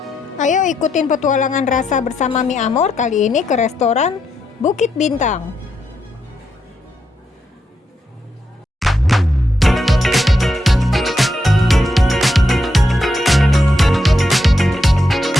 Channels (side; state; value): both; normal; correlation 0.81